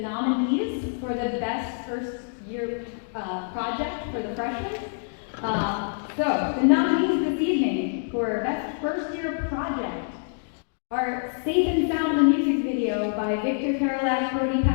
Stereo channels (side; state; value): right; silent; digital silence